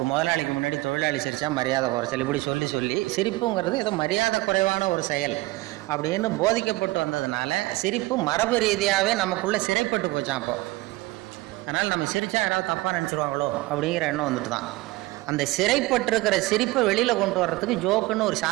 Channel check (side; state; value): left; quieter; 20.3 dB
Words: முதலாளிக்கு முன்னாடி தொழிலாளி சிரித்தா மரியாதை குறைச்சல், இப்படி சொல்லி சொல்லி சிரிப்புங்கிறது ஏதோ மரியாதை குறைவான ஒரு செயல் அப்படின்னு போதிக்கப்பட்டு வந்ததுனால சிரிப்பு மரபு ரீதியாகவே நமக்குள்ளே சிறைப்பட்டு போச்சான். அப்போ அதனால் நம்ம சிரித்தா யாராவது தப்பாக நினச்சிருவாங்களோ அப்படிங்கிற எண்ணம் வந்துட்டு தான். அந்த சிறைப்பட்டிருக்கிற சிரிப்பை வெளியில் கொண்டு வர்றதுக்கு ஜோக்குன்னு ஒரு